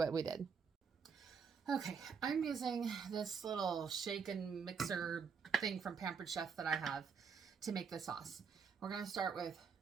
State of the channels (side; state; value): left; quieter; 6.1 dB